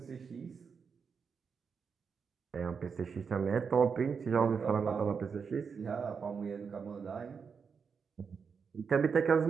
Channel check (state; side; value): quieter; left; 5.9 dB